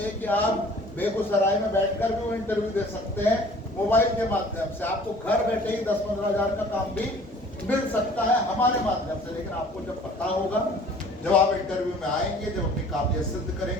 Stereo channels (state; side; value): normal; both; correlation 0.51